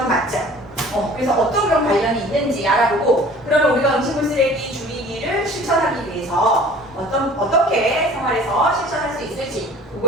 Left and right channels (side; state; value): both; normal; correlation 0.48